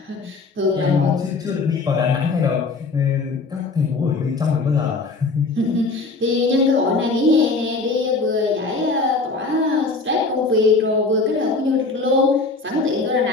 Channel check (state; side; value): quieter; right; 3.8 dB